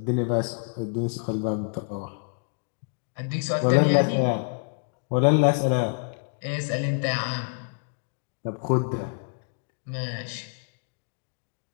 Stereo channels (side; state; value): right; silent; 60 dB below the other